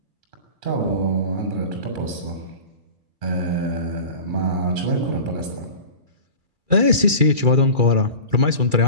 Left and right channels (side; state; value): left; late; 2.3 ms